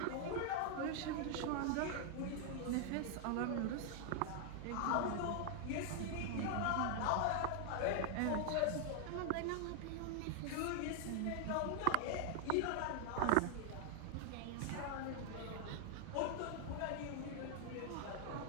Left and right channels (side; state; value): both; different; correlation 0.00